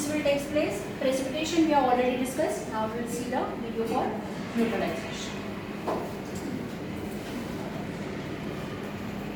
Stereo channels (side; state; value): both; identical; correlation 1.00